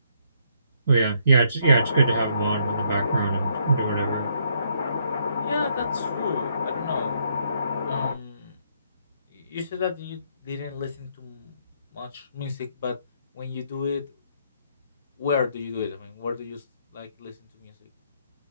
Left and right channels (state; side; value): inverted; both; correlation -0.71